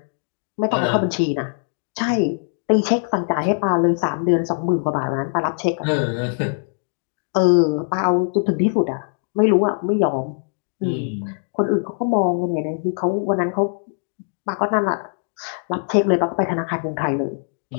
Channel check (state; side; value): silent; right; digital silence